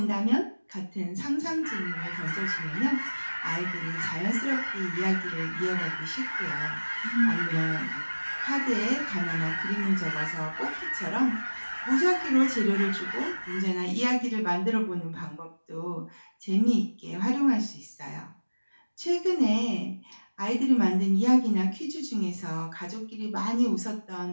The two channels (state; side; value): inverted; both; correlation -1.00